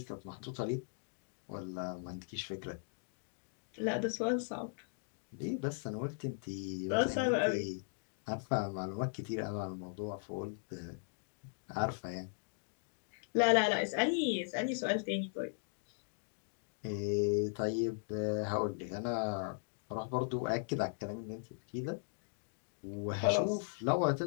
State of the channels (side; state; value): right; silent; digital silence